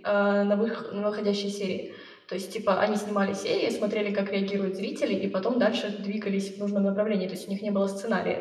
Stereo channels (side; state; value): both; identical; correlation 1.00